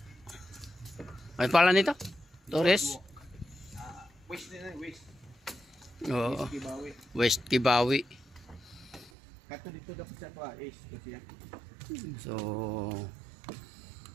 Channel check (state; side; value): drops out; left; at 9.1 s